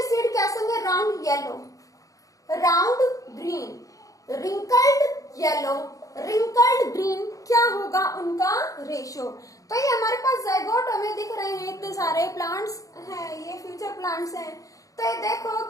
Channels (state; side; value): late; right; 0.16 ms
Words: सीड कैसे होंगे? Round yellow, round green, wrinkled yellow, wrinkled green. क्या होगा उनका रेशियो? तो ये हमारे पास जाइगोट हमें दिख रहे हैं, इतने सारे प्लांट्स हैं, ये फ्यूचर प्लांट्स हैं। तो ये देखो